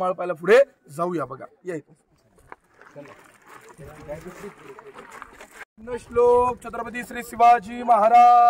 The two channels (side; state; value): both; identical; correlation 1.00